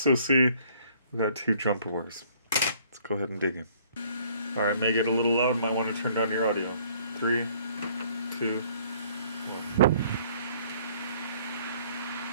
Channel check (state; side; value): inverted; both; correlation -0.60